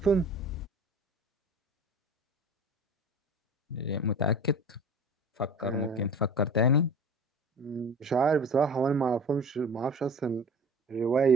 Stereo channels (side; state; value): both; normal; correlation 0.39